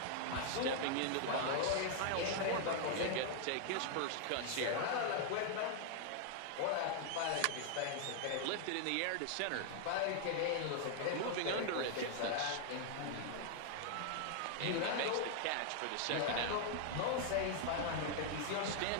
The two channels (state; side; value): different; both; correlation 0.00